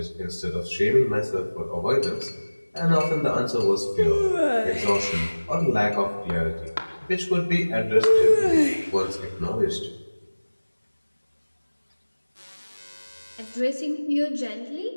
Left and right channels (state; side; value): inverted; both; correlation -1.00